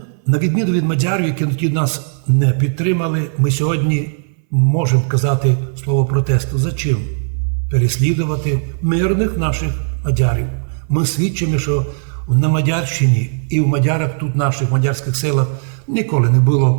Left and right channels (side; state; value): left; silent; 62 dB below the other